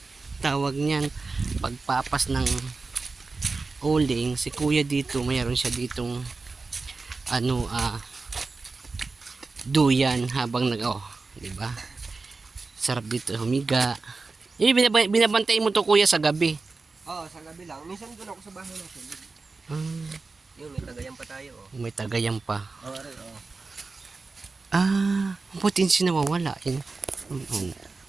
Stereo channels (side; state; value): left; quieter; 4.0 dB